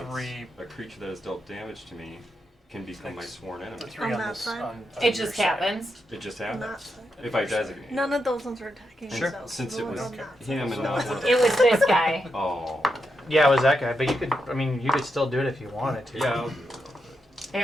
3. a creature that has dealt damage to me can become my sworn The enemy. 3 On on that this. side? On It your just side. happens. It just On that happens. side. If I designate. None of those ones were attacking Sure. themselves. Since The it ones was on that side. him and not one. It was this guy. Oh. Yeah, it was that guy, but you could, I mean, you could still do it if you wanted to. Yeah. They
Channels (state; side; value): normal; both; correlation 0.84